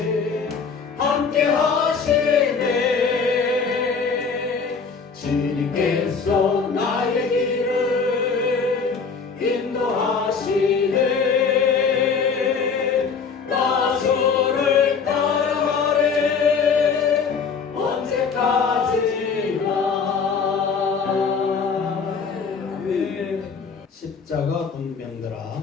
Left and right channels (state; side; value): quieter; right; 5.5 dB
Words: 함께 하시네 주님께서 나의 길을 인도하시네 나 주를 따라가리 언제까지나 십자가 군병들아